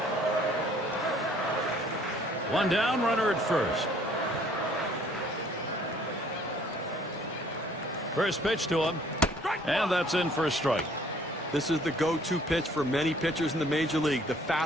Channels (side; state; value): both; normal; correlation 0.59